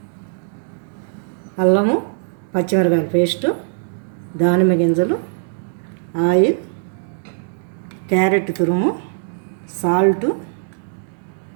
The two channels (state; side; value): silent; left; digital silence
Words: అల్లము పచ్చిమిరపకాయల పేస్టు, దానిమ్మ గింజలు, ఆయిల్, క్యారెట్ తురుము, సాల్టు,